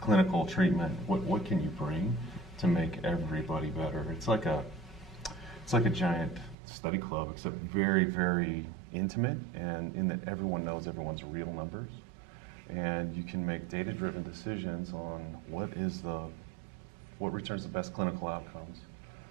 clinical treatment, what can you bring to make everybody better? It's like a giant study club, except very, very intimate, and in that everyone knows everyone's real numbers, and you can make data-driven decisions on what returns the best clinical outcomes,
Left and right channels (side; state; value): left; drops out; at 6.6 s